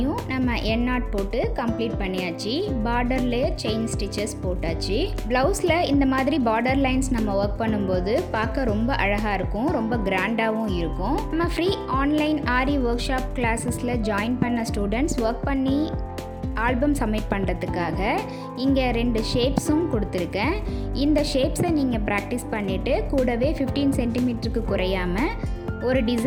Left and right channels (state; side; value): identical; both; correlation 1.00